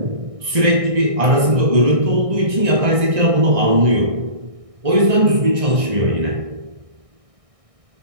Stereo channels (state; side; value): late; left; 1.6 ms